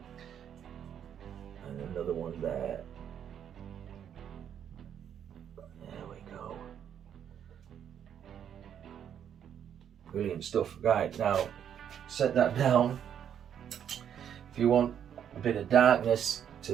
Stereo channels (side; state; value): left; quieter; 9.0 dB